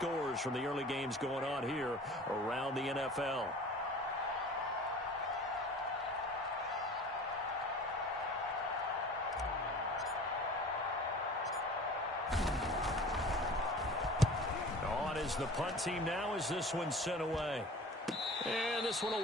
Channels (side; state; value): both; normal; correlation 0.42